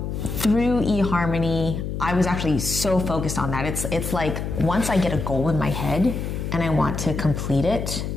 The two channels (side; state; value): left; noise; hum, 4 dB below the sound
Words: through eHarmony, I was actually so focused on that. It's like once I get a goal in my head and I want to complete it,